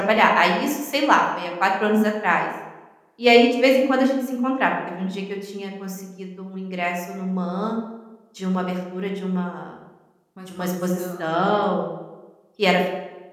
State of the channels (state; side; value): identical; both; correlation 1.00